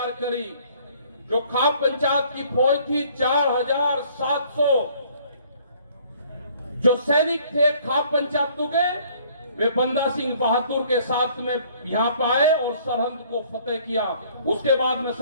करी। जो खाप पंचायत की फौज थी 4700 जो सैनिक थे खाप पंचायतों के, वे बंदा सिंह बहादुर के साथ में यहाँ पे आए और सरहद को फतेह किया। उसके बाद में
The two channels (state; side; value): inverted; both; correlation -0.58